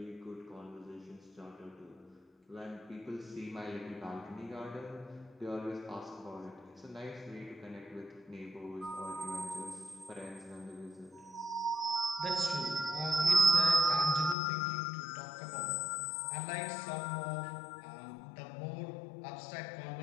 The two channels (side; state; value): right; drops out; at 14.4 s